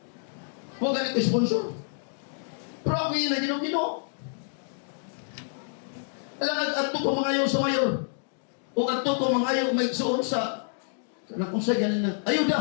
Wagan ko sponsor. Pero ako yun na Ginoo. Alam ato ko mangayo sa mayor. O ato ko mangayo may suon sa kung sa ganin na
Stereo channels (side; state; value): right; silent; digital silence